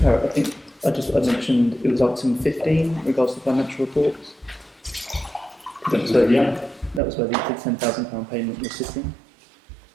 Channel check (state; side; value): drops out; left; at 7.0 s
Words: Parrott, I think I mentioned it was item 15 in regards to financial reports. That was where the £10,000 payment was sitting.